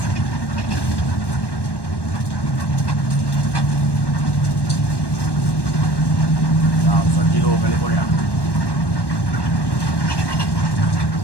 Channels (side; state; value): right; late; 1.1 ms